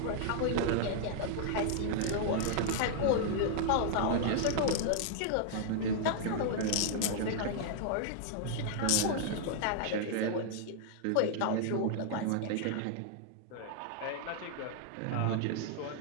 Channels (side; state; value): both; different; correlation -0.01